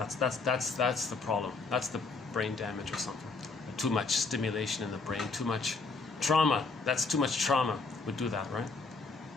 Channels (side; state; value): right; quieter; 4.1 dB